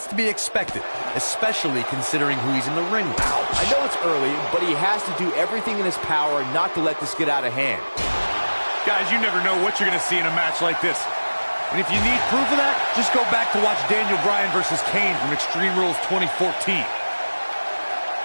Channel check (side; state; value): both; inverted; correlation -1.00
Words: to be expected, especially considering who he's in the ring with. I know it's early, but he has to do everything in his power not to let this get out of hand. Guys, you never know what you're going to see in a match like this. And if you need proof of that, just go back to watch Daniel Bryan versus Kane from Extreme Rules 2014.